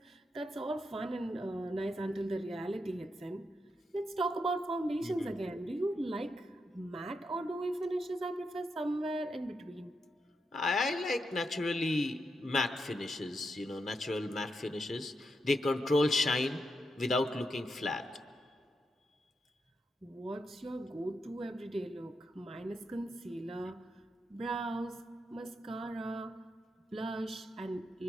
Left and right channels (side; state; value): both; normal; correlation 0.84